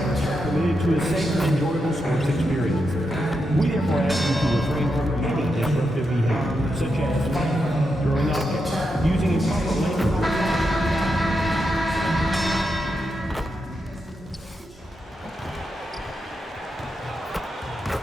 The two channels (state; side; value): normal; both; correlation 0.85